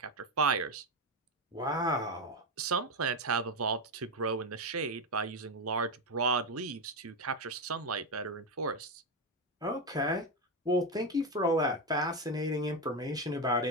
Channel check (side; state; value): both; normal; correlation 0.11